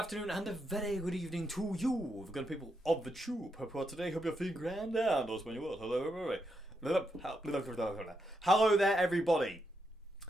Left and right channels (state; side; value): normal; both; correlation 0.82